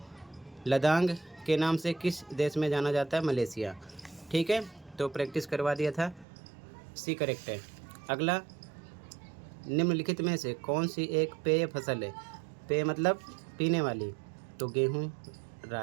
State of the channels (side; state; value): left; drops out; at 6.2 s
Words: लदांग के नाम से किस देश में जाना जाता है? मलेशिया। ठीक है, तो प्रैक्टिस करवा दिया था। सी करेक्ट है। अगला, निम्नलिखित में से कौन सी एक पेय फसल है? पेय मतलब पीने वाली। तो गेहूँ,